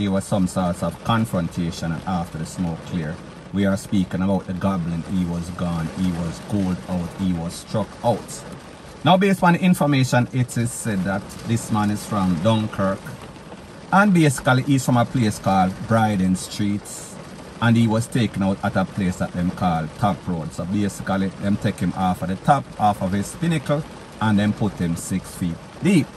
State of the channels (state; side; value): identical; both; correlation 1.00